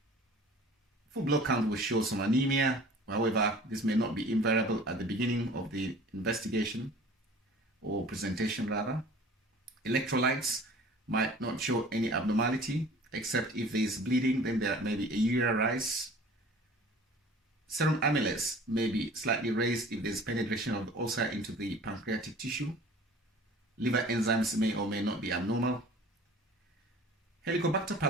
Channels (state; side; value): normal; both; correlation 0.46